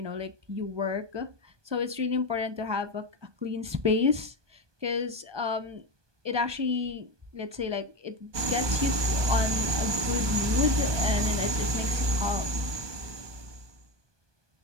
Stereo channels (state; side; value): late; left; 1.2 ms